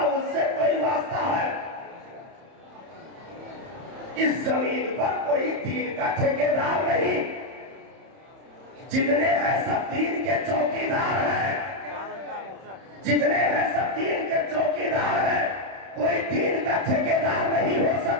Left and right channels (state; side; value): late; left; 31 ms